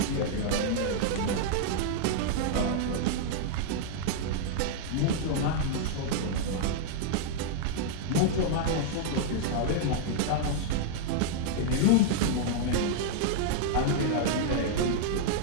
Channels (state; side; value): different; both; correlation -0.01